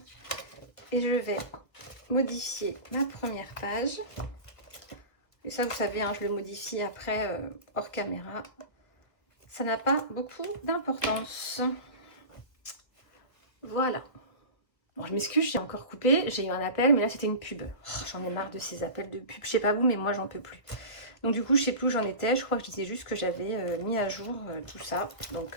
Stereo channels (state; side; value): late; right; 1.5 ms